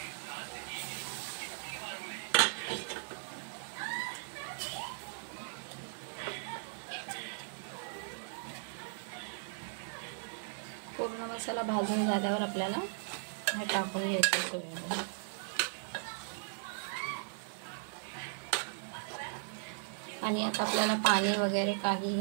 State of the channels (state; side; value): silent; left; 53 dB below the other